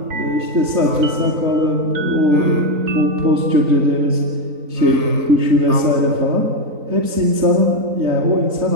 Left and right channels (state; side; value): late; left; 3.9 ms